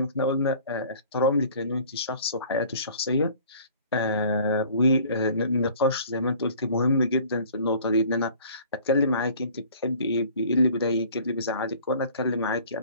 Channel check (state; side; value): inverted; both; correlation -0.50